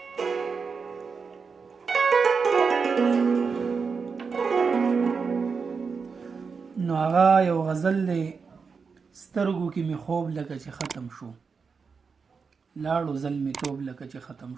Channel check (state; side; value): quieter; left; 5.3 dB